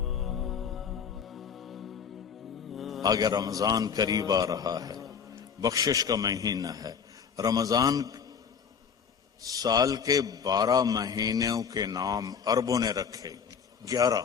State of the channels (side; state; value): right; quieter; 6.8 dB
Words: آگے رمضان قریب آ رہا ہے، بخشش کا مہینہ ہے. رمضان سال کے 12 مہینوں کے نام عربوں نے رکھے 11،